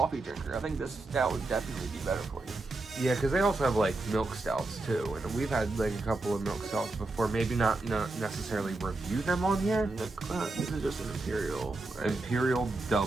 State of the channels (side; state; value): left; quieter; 3.1 dB